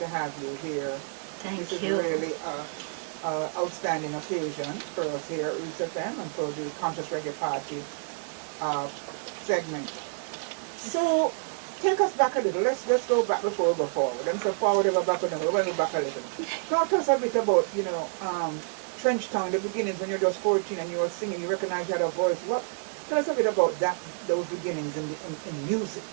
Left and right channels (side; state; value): left; silent; 57 dB below the other